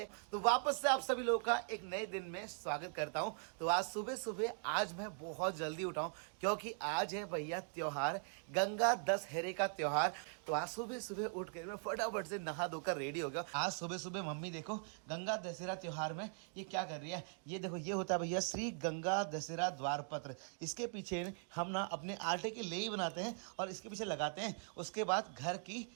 तो वापस से आप सभी लोगों का एक नए दिन में स्वागत करता हूं। तो आज सुबह सुबह आज मैं बहुत जल्दी उठा हूं, क्योंकि आज है भैया त्योहार, गंगा दशहरे का त्योहार। तो आज सुबह सुबह उठ कर मैं फटाफट से नहा धोकर रेडी हो गया। आज सुबह सुबह मम्मी देखो गंगा दशहरा त्योहार में ये क्या कर रही है। ये देखो, ये होता है भैया श्री गंगा दशहरा द्वार पत्र। इसके पीछे हम ना अपने आटे के लेई बनाते हैं और इसके पीछे लगाते हैं। उसके बाद घर की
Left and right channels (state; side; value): silent; left; 50 dB below the other